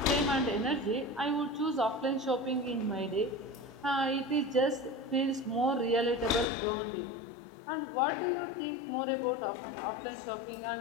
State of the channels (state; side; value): drops out; right; at 6.5 s